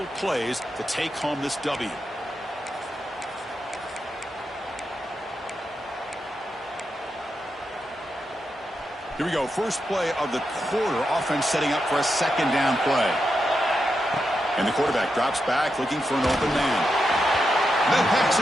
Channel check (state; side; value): normal; both; correlation 0.86